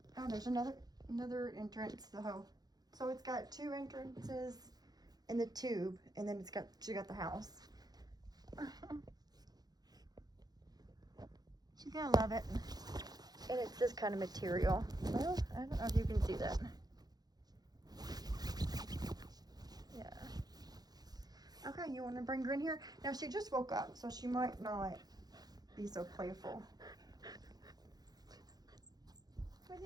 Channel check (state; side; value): late; left; 0.19 ms